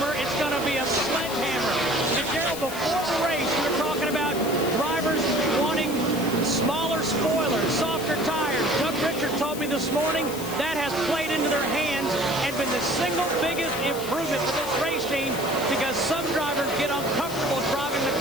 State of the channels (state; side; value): noise; left; hiss, 11 dB below the sound